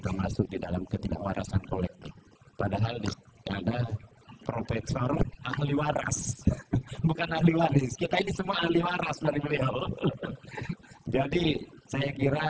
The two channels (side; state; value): both; identical; correlation 1.00